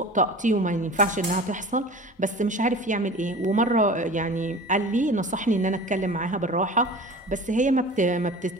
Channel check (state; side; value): normal; both; correlation 0.38